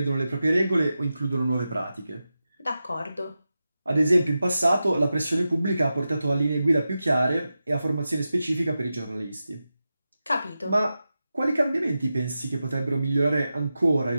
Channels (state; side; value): inverted; both; correlation -0.92